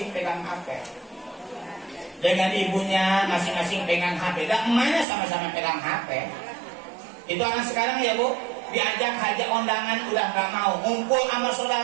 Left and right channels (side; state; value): left; drops out; at 5.1 s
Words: pegang HP. Dengan ibunya masing-masing pegang HP. Dan emaknya sama-sama pegang HP. Itu anak sekarang ya Bu, diajak hajak undangan udah nggak mau, ngumpul sama